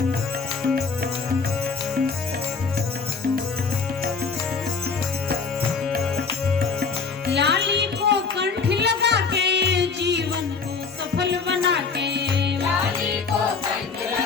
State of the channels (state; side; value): quieter; right; 5.1 dB